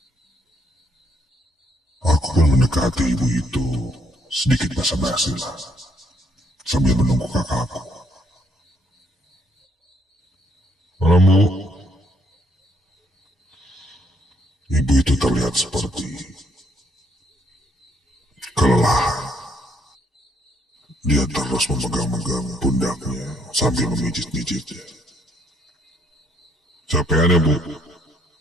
Aku pun mendekati ibu itu sedikit basa-basi lah, sambil menunggu kakakku. Malam Bu, terlihat seperti kelelahan. Dia terus memegang-megang pundaknya sambil memijit-mijitnya. Capean ya, Bu?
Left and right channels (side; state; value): both; normal; correlation 0.69